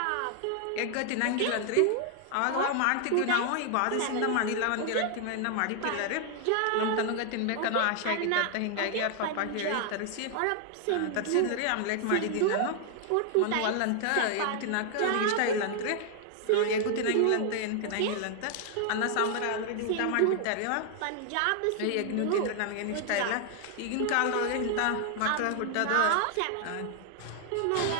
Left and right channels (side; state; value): both; different; correlation 0.00